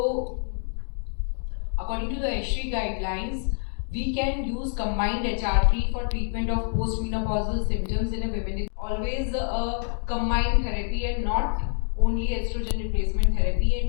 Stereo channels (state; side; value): silent; right; 56 dB below the other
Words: according to the ESHRI guidelines, we can use combined HRT for treatment of postmenopausal symptoms in a woman. It's always a combined therapy and not only estrogen replacement therapy,